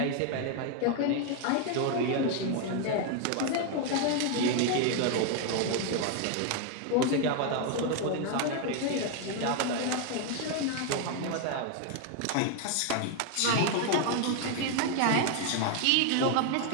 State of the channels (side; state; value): both; different; correlation 0.01